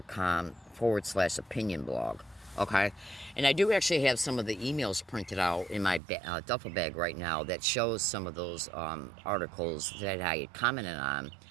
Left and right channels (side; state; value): left; drops out; at 6.0 s